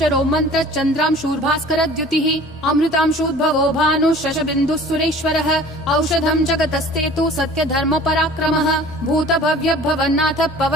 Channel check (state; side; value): normal; both; correlation 0.46